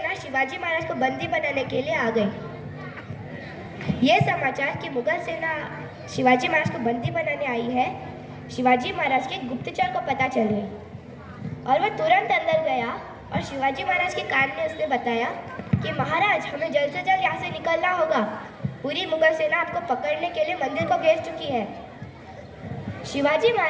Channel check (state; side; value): identical; both; correlation 1.00